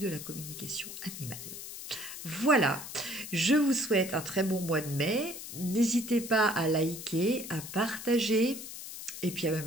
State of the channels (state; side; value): noise; left; hiss, 10 dB below the sound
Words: la communication animale. Voilà, je vous souhaite un très bon mois de mai. N'hésitez pas à liker, à partager et puis à me